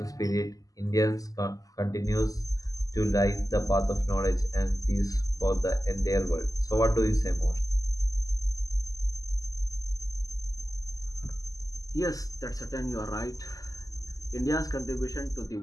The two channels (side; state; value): right; late; 0.17 ms